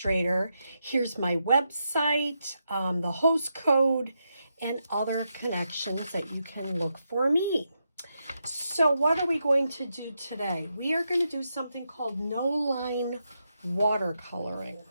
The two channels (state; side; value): inverted; both; correlation -0.84